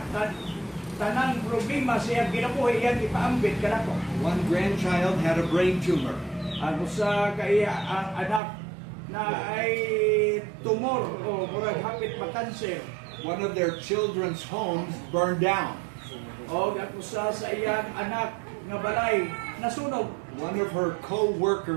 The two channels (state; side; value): drops out; left; at 8.4 s